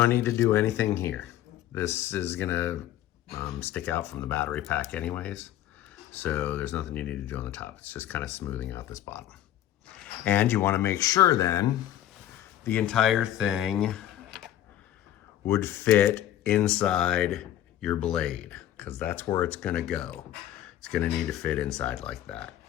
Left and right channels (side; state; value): right; quieter; 12.3 dB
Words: need to do anything here. This is gonna stick out from the battery pack anyways. So there's nothing you need to do on the top. It's just kind of smoothing out this bottom. And you wanna make sure then the entire thing would fit inside your blade, because that's where it's gonna go. It's gonna need to fit inside like that.